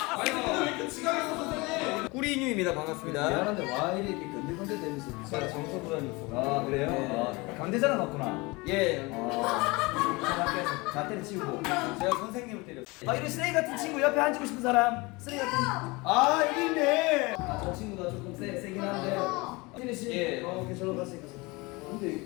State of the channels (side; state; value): right; quieter; 24.7 dB